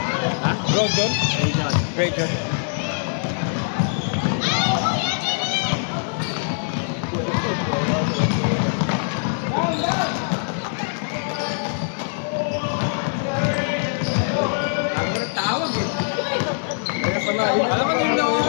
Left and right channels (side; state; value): right; silent; 57 dB below the other